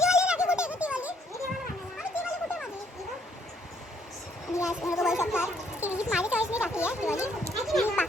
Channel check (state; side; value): normal; both; correlation 0.68